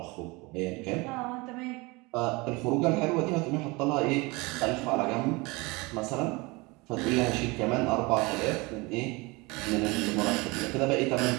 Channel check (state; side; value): quieter; left; 25.0 dB